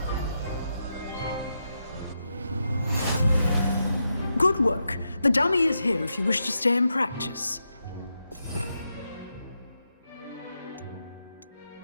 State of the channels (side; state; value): both; inverted; correlation -0.85